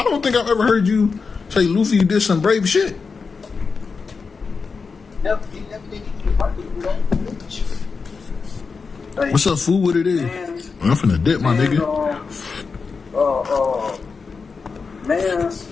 don't think I've ever heard you say Luffy did some brave shit. Never, he never did anything like that. Like, What's up, fool? What it is? man, I'm finna dip, my nigga. Man's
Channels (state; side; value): quieter; right; 4.9 dB